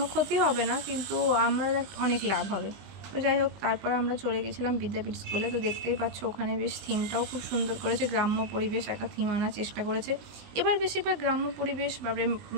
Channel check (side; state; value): left; late; 20 ms